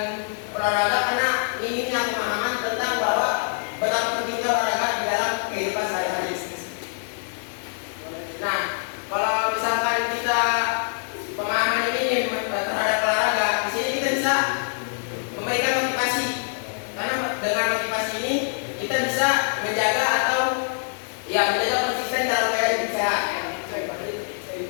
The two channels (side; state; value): right; silent; digital silence